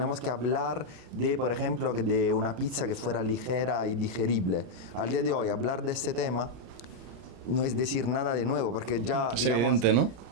que hablar de, por ejemplo, de una pizza que fuera ligera y digerible. Al día de hoy hablar de este tema no es decir nada de nuevo, porque ya, es digamos, evidente, ¿no?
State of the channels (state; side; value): late; left; 34 ms